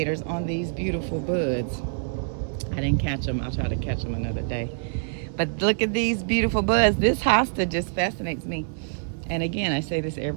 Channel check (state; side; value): silent; left; digital silence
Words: on these beautiful buds. I didn't catch them. I'll try to catch them another day. But look at these beautiful buds. This hosta just fascinates me. And again, I say this